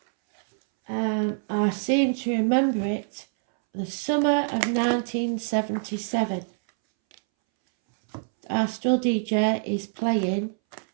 I seem to remember it the summer of 1977. Our still DJ is playing,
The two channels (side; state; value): left; silent; 61 dB below the other